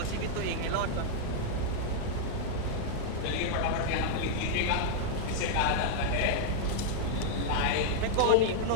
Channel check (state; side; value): different; both; correlation -0.01